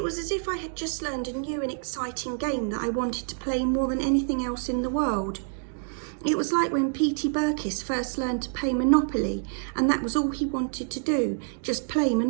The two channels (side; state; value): left; silent; digital silence